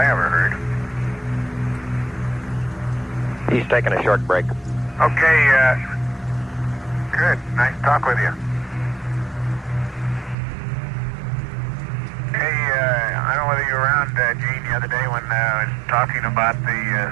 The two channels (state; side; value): drops out; left; at 10.4 s